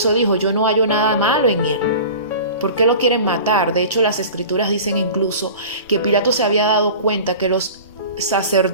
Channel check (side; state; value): both; inverted; correlation -0.38